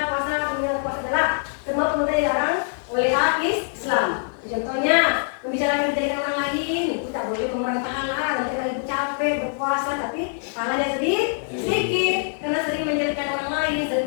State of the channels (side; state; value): right; silent; 63 dB below the other